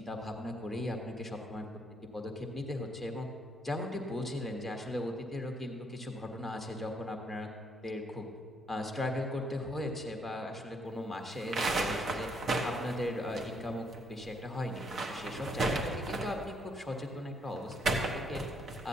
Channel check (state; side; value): normal; both; correlation 0.71